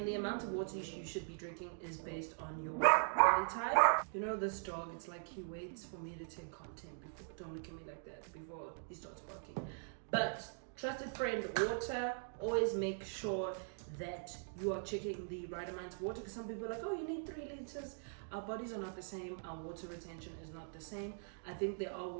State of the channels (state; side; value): silent; left; digital silence